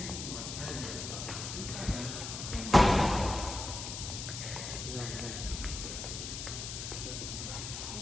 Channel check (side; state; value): left; noise; hiss, 6 dB below the sound